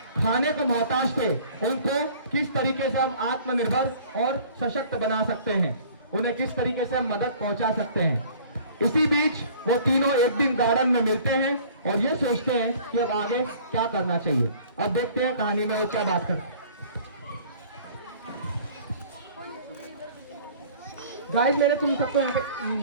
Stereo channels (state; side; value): inverted; both; correlation -0.50